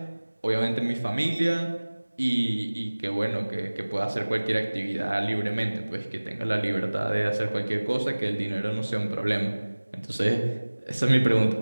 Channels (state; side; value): inverted; both; correlation -1.00